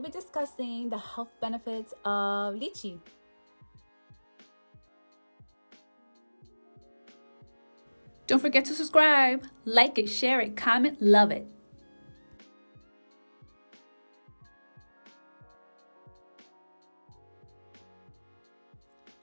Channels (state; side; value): inverted; both; correlation -1.00